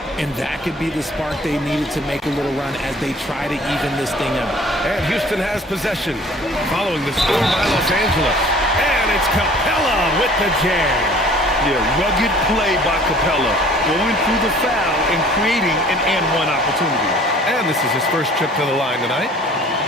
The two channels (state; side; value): normal; both; correlation 0.51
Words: And that could be the spark they needed to make a little run as they try to even this thing up. And Houston has possession following the score by Los Angeles. And it's Capella with the jam. Yeah, rugged play by Capella, going through the foul and creating an and-one opportunity. And this is his first trip to the line tonight.